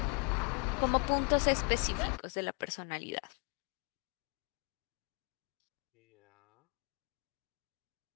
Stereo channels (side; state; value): right; quieter; 37.1 dB